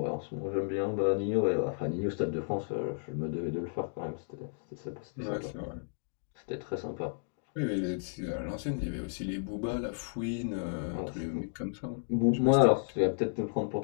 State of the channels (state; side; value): silent; right; digital silence